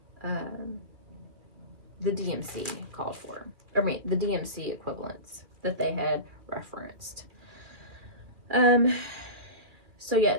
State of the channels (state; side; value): late; left; 2.4 ms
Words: the DMC called for. I mean, the DMC equivalents that they had referenced. So